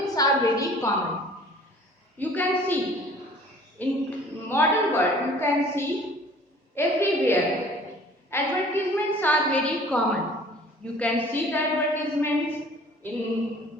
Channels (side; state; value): both; normal; correlation 0.50